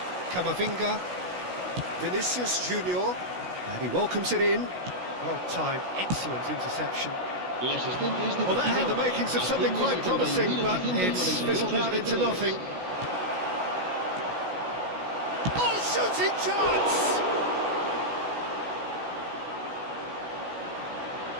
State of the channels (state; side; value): late; left; 16 ms